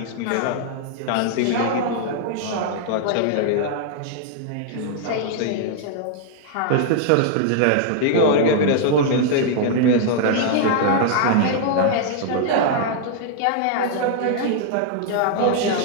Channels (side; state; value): both; different; correlation -0.01